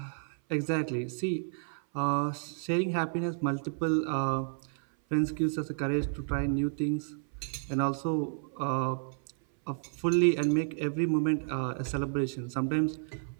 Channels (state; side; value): silent; left; 57 dB below the other